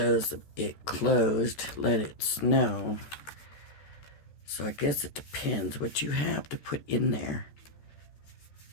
it closed. Let it snow. So I guess it depends what you have to put in there.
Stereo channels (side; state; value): right; late; 14 ms